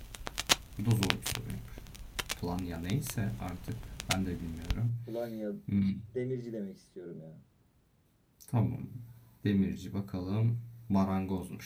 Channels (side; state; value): both; identical; correlation 1.00